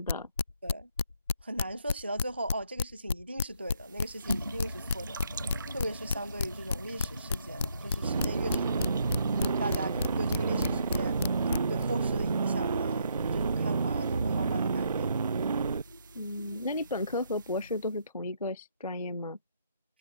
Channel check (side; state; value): both; inverted; correlation -0.74